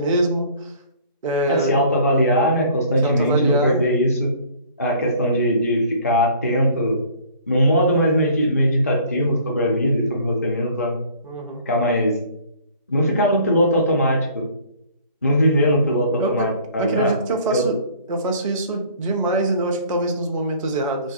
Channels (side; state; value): both; inverted; correlation -0.53